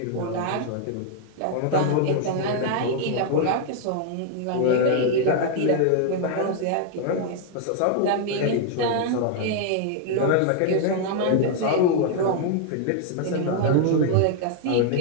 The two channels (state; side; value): different; both; correlation 0.00